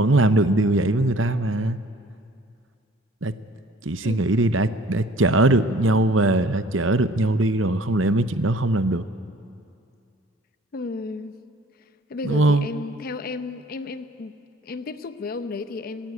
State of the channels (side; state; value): both; normal; correlation 0.53